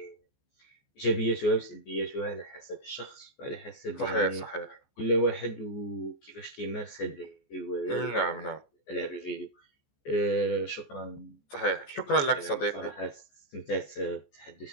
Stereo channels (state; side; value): late; right; 14 ms